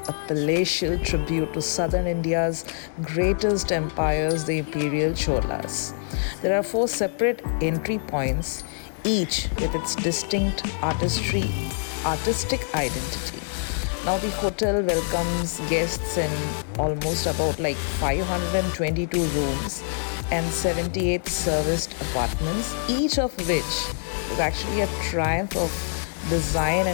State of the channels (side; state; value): right; silent; digital silence